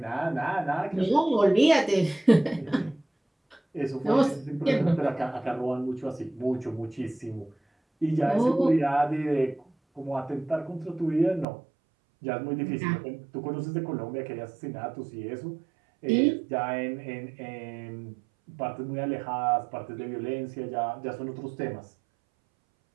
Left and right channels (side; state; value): left; drops out; at 11.5 s